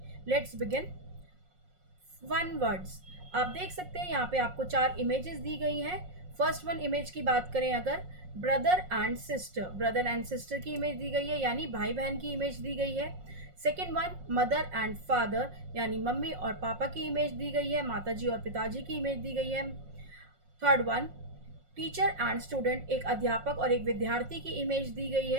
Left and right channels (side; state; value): left; late; 5.5 ms